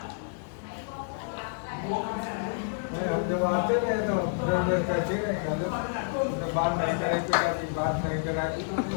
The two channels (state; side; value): silent; right; digital silence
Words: हम जब आते रहे तो कहते रहे बात नहीं करे, बात नहीं कराई।